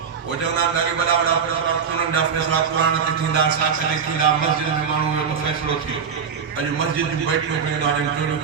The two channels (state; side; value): quieter; left; 6.7 dB